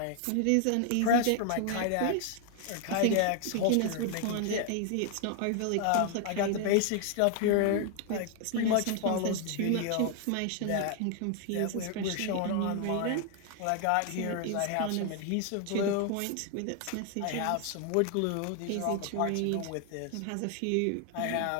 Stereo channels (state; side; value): different; both; correlation 0.00